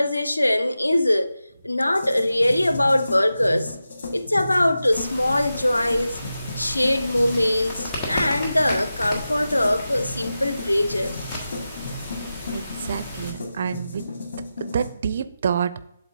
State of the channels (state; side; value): inverted; both; correlation -0.92